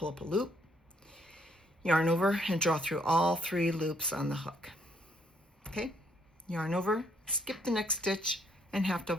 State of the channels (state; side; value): normal; both; correlation 0.69